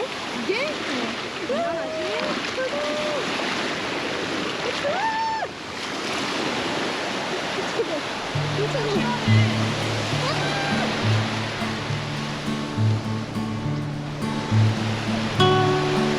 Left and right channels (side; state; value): both; identical; correlation 1.00